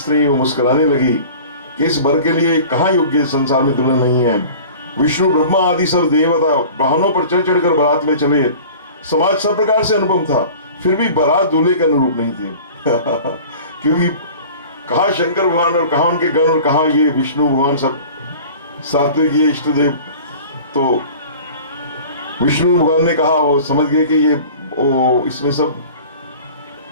वो मुस्कुराने लगी कि इस वर के लिए कहाँ योग्य संसार में दुल्हन नहीं है। विष्णु ब्रह्मा आदि सब देवता वाहनों पर चढ़ चढ़कर बारात में चले। समाज सब प्रकार से अनुपम था, फिर भी बारात दूल्हे के अनुरूप नहीं थी। क्योंकि कहा शंकर भगवान और कहा उनके गण और कहा ये विष्णु भगवान, सब सात्विक ये इष्ट देव। तो विष्णु भगवान ने कहा, वो समझ गए कि ये इसमें सब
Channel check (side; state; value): both; inverted; correlation -0.42